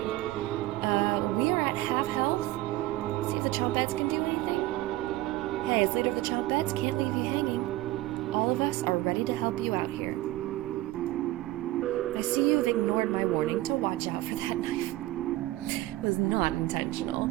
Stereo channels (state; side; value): quieter; left; 17.1 dB